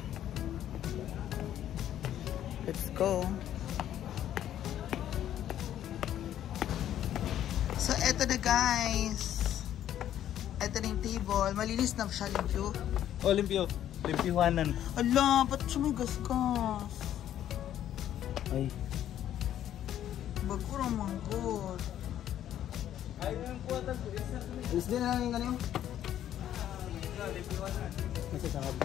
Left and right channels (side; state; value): right; quieter; 11.3 dB